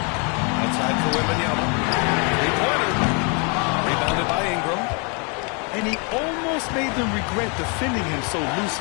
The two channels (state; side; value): quieter; right; 35.0 dB